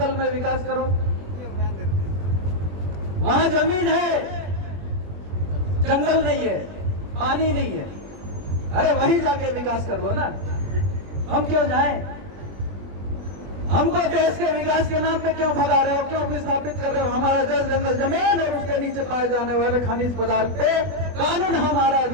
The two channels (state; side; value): late; left; 21 ms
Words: में विकास करो। वहां जमीन है, जंगल नहीं है, पानी नहीं है। अरे वहीं जाके विकास कर लो ना। हम क्यों जाएं? हमको देश के विकास के नाम पे क्यों भगा रहे हो? क्यों विस्थापित कर रहे हो? हमारा जल जंगल जमीन और उसके नीचे पाए जाने वाले खनिज पदार्थ पे कानून हमारा